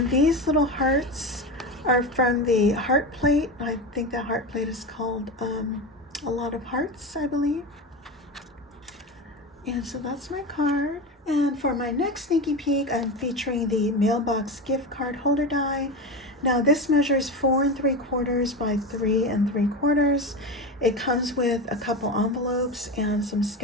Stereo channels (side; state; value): both; normal; correlation 0.22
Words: these little hearts are from the heart plate. I think that heart plate is called A Lot of Hearts, I believe. And so that's my card. And for my next sneaky peek, I'm featuring the Mailbox gift card holder die. Now this measures 4 3/4 by 3 3/4. It comes with a couple envelopes and some